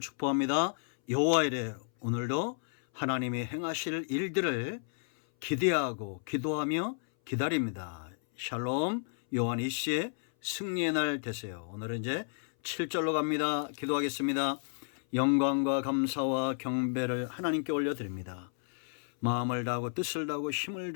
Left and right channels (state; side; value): silent; right; 56 dB below the other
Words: 축복합니다. 여호와 이래 오늘도 하나님이 행하실 일들을 기대하고 기도하며 기다립니다. 샬롬. 요한 이시의 승리의 날 되세요. 오늘은 이제 7절로 갑니다. 기도하겠습니다. 영광과 감사와 경배를 하나님께 올려드립니다. 마음을 다하고 뜻을 다하고 힘을